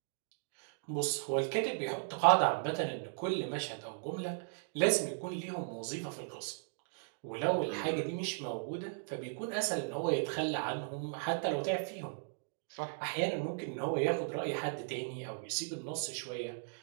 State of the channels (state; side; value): silent; left; digital silence